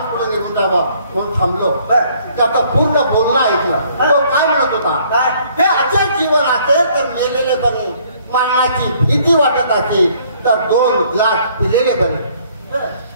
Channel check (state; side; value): inverted; both; correlation -0.62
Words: पुढे निघून जावं म्हणून थांबलो। त्याचं पूर्ण बोलणं ऐकलं। तो काय म्हणत होता? हे असे जीवन असेल तर मेलेले बरे, मरणाची भीती वाटत असेल तर 2 ग्लास पिलेले बरे।